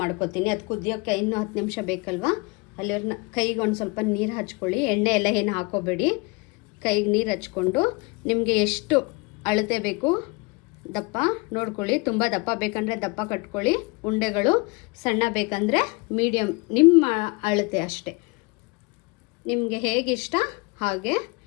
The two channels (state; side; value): quieter; right; 27.8 dB